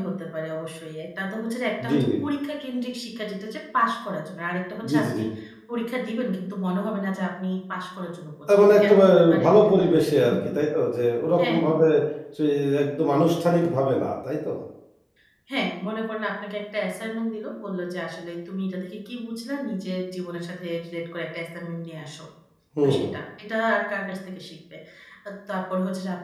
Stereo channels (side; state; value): both; identical; correlation 1.00